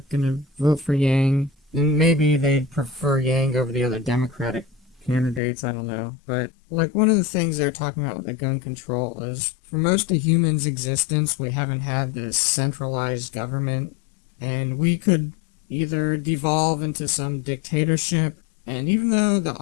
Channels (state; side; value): drops out; right; at 5.4 s